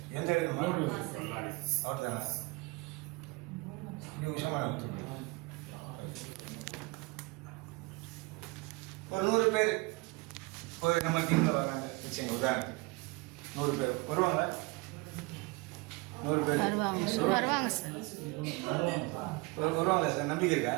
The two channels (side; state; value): left; quieter; 24.5 dB